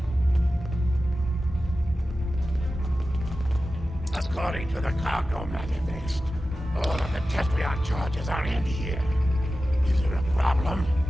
According to the cargo manifest, all of the Tetrion charges are in here. Is there a problem?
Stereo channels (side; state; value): both; normal; correlation 0.94